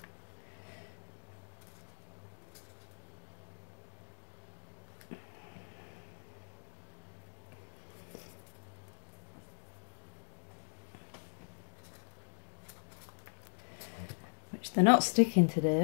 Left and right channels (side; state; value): right; silent; digital silence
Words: They're not sticking